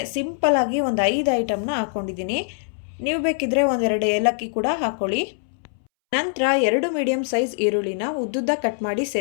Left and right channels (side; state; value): right; silent; 63 dB below the other